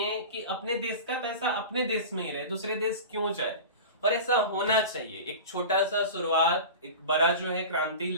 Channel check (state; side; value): inverted; both; correlation -0.32